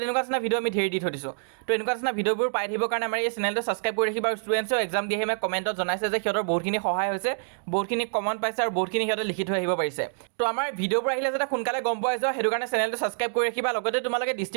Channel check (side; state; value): left; silent; digital silence